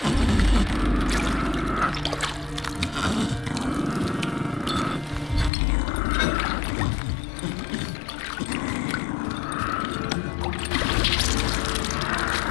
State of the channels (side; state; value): right; drops out; at 5.5 s